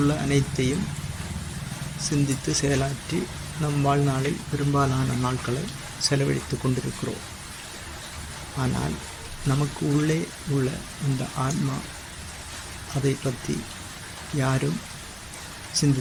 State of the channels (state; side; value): identical; both; correlation 1.00